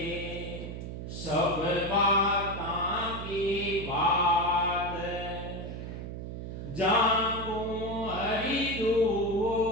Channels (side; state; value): right; noise; hum, 7 dB below the sound